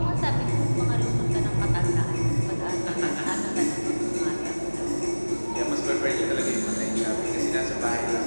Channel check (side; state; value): both; inverted; correlation -1.00